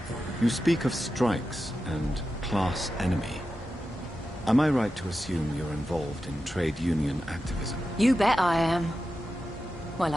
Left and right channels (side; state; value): both; normal; correlation 0.91